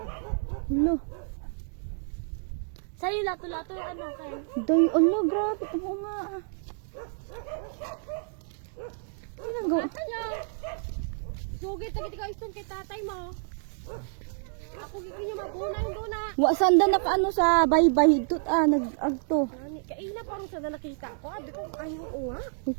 Hello. Sa'yo lato-lato yung ano kayo? Day, Allah, grabe. Ano nga ah. Ano nga? Ata niya! Sugit na kita istong kay tatay mo. Ako gigi niya mabuna yung duna. Wa sanda nakaano sa baybay higtot nag-agto. Nani, kaina parang sa nakita ko. Abi ko ayaw nga.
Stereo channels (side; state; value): left; silent; digital silence